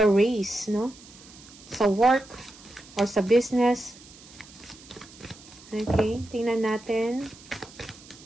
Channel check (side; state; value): right; noise; hiss, 21 dB below the sound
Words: race, no? Sa work or sa business. Okay, tingnan natin.